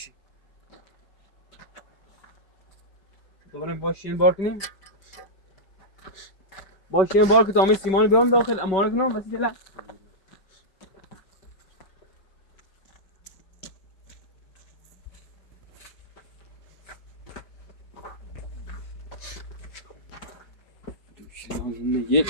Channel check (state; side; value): late; right; 5.1 ms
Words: دوباره باشین بار کنیم باشین بار که تا همه سیمان بیارم داخل امانه کنم بسی جلا یه